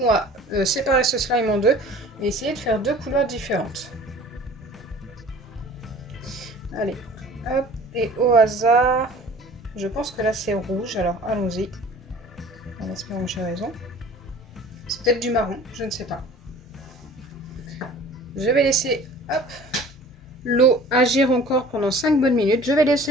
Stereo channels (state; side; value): normal; both; correlation 0.46